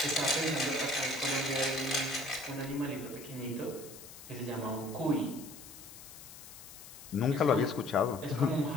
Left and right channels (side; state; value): left; noise; hiss, 16 dB below the sound